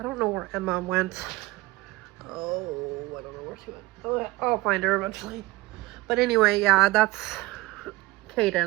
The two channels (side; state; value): left; quieter; 20.5 dB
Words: don't know where Emma went. Oh, I don't know where she went. Oh, I'll find her eventually. But anyway, yeah, that's